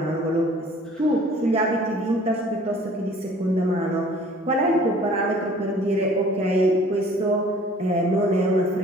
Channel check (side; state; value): both; normal; correlation 0.51